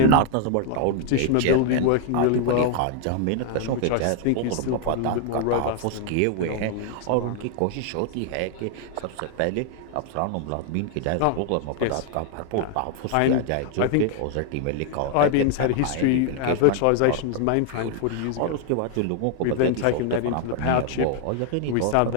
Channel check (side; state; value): both; different; correlation 0.00